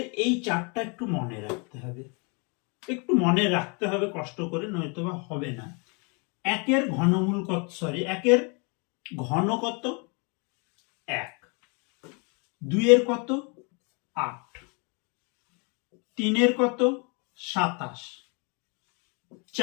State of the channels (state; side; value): quieter; right; 33.6 dB